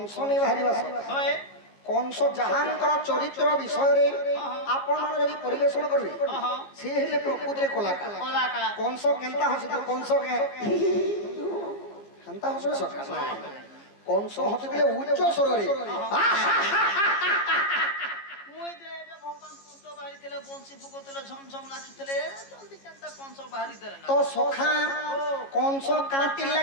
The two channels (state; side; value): late; right; 15 ms